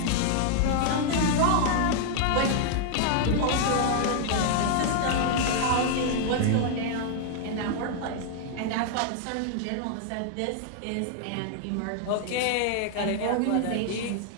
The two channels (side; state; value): both; different; correlation 0.00